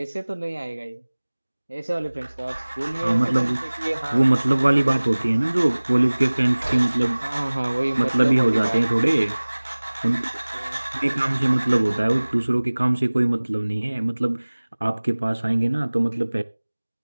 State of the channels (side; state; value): both; inverted; correlation -1.00